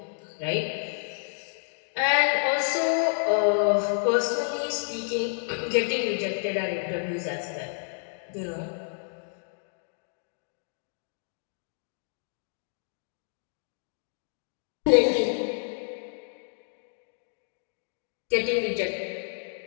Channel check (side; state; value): right; silent; digital silence